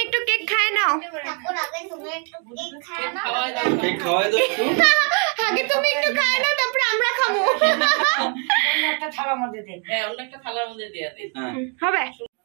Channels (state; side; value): quieter; left; 38.3 dB